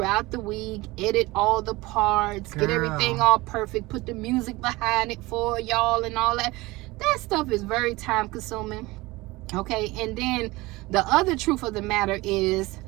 the week, edit all the parts, get everything all perfect, put the music behind it for y'all and all that. That stuff is very time consuming. Okay, and then the other truth of the matter is,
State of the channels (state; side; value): quieter; left; 21.3 dB